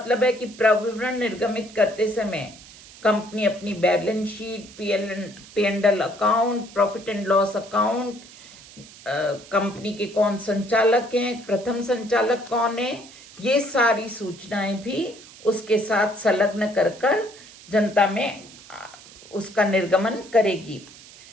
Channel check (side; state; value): right; noise; hiss, 20 dB below the sound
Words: है कि प्रविवरण निर्गमित करते समय कंपनी अपनी balance sheet, P&L account, profit and loss account, company के कौन संचालक हैं, प्रथम संचालक कौन है, ये सारी सूचनाएं भी उसके साथ संलग्न कर जनता में उसका निर्गमन करेगी।